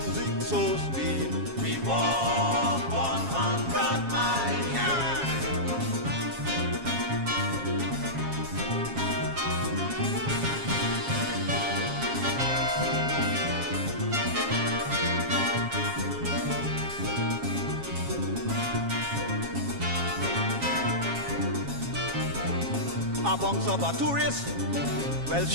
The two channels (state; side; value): late; left; 7.3 ms